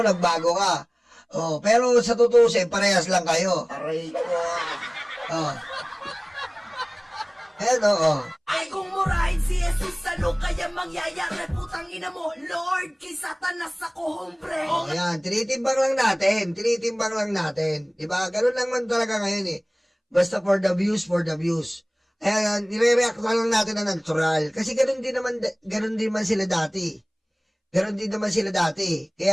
ka. Pero sa tutusin, parehas lang kayo. Aray ko. Ay kung murahit si Jesus, ano kaya mangyayari? Putang ina mo, Lord, kay Satanas ako, hombre. Ayan, tinitimbang lang natin. Diba? Ganun lang man talaga ngayon eh. Basta for the views. Ayan, nire-react lang natin na natural. Kasi ganun din man sila dati.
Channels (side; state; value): both; identical; correlation 1.00